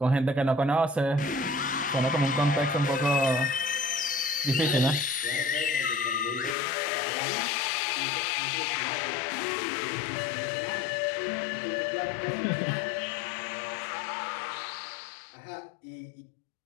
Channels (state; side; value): drops out; right; at 6.6 s